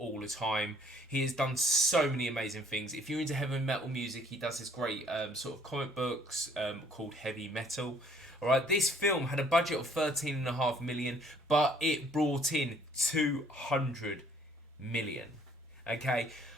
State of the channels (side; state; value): both; normal; correlation 0.61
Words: the time. He has done so many amazing things. If you're into heavy metal music, he does this great sort of comic books called Heavy Metal. All right, this film had a budget of $13.5 million, but it brought in $200 million. Okay,